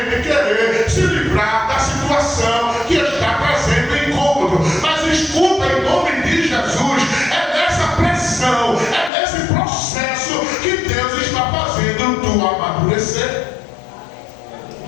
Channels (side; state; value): right; drops out; at 9.1 s